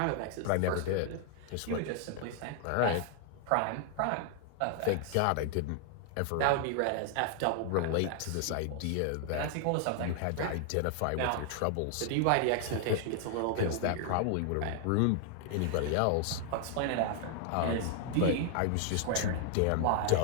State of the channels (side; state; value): both; different; correlation 0.00